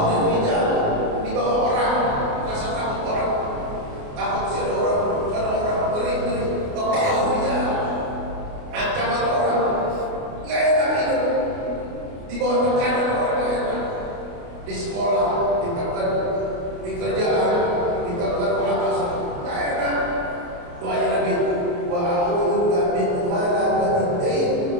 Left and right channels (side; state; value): left; late; 29 ms